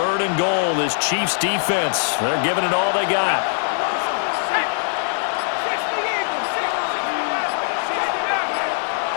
and goal. This Chiefs defense, they're giving it all they got.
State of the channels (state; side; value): silent; right; 65 dB below the other